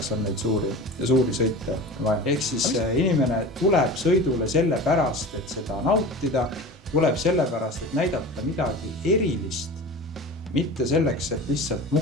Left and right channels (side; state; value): both; normal; correlation 0.34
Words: on neid suuri sõite vaja. Ehk siis inimene tuleb sõidule selle pärast, et seda nautida, tuleb selle pärast, et näidata midagi erilist, mitte selleks, et lihtsalt